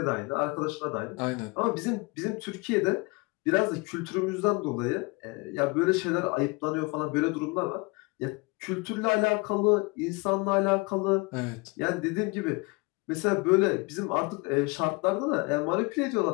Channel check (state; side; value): quieter; right; 27.2 dB